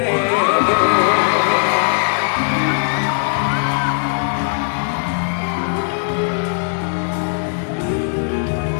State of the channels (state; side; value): silent; right; digital silence